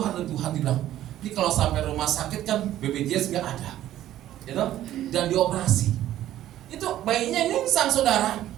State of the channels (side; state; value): left; quieter; 13.0 dB